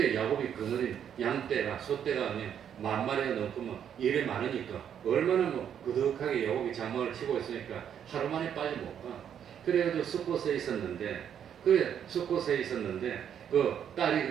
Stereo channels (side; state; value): left; quieter; 8.9 dB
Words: 야곱이 그늘인 양떼가 소떼가 그냥 10,000마리가 넘고 뭐 일이 많으니까 얼마나 뭐 그득하게 야곱이 장막을 치고 있으니까 하루 만에 빨리 못 가. 그래가지고 숫곳에 있었는데 그 딸이